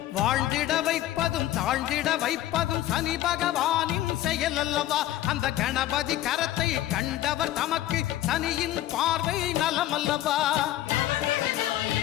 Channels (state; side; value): quieter; right; 13.9 dB